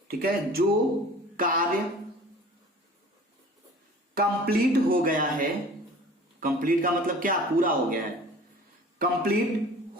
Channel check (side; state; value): both; normal; correlation 0.44